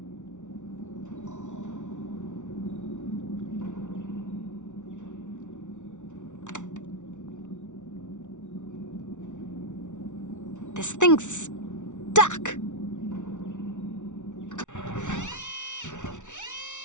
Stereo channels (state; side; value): late; right; 0.86 ms